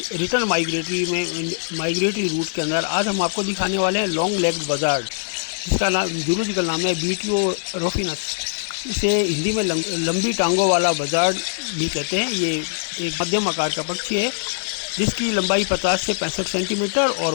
रिटर्न माइग्रेटरी रूट के अंदर आज हम आपको दिखाने वाले हैं लॉन्ग लेग्ड बजार्ड, जिसका नाम जूलॉजिकल नाम है बीटियो रोफिनस। इसे हिंदी में लंबी टांगों वाला बजार्ड भी कहते हैं। ये एक मध्यम आकार का पक्षी है जिसकी लंबाई 50 से 65 सेंटीमीटर और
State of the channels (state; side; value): silent; right; digital silence